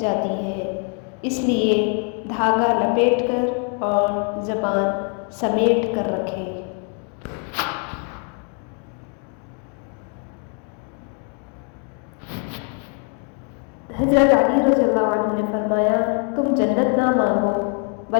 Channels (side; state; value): right; quieter; 38.1 dB